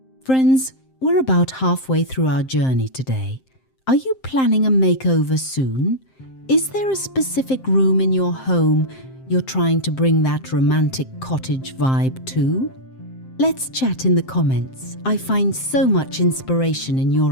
Friends, we're about halfway through our journey today. Are you planning a makeover soon? Is there a specific room in your home you're trying to bring that romantic cottage vibe to? Let's chat in the comments. I find so much inspiration in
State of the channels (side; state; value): right; late; 7.6 ms